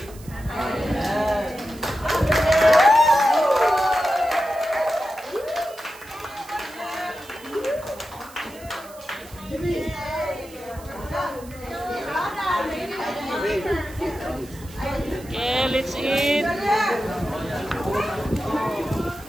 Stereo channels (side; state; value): right; noise; hiss, 21 dB below the sound